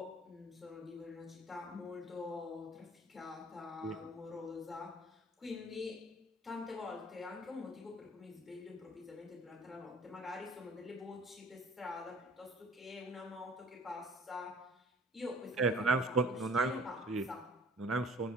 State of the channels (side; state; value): both; normal; correlation 0.52